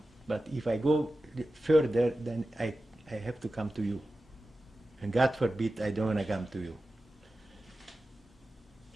but if I go further, then I have to come to you. And God forbid, I don't want to come to you.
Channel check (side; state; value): both; normal; correlation 0.94